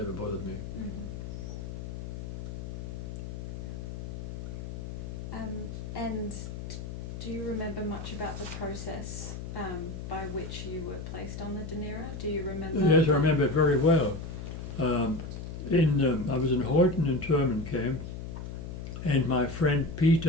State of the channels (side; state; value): left; noise; hum, 7 dB below the sound